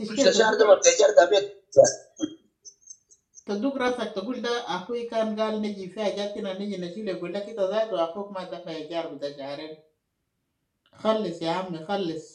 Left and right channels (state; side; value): identical; both; correlation 1.00